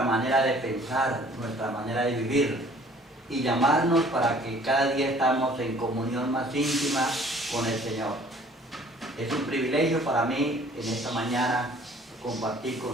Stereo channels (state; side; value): normal; both; correlation 0.54